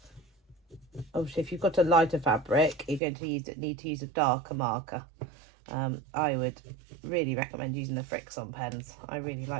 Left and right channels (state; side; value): drops out; left; at 3.0 s